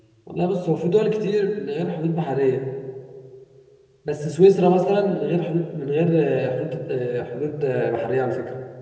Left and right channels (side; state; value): both; identical; correlation 1.00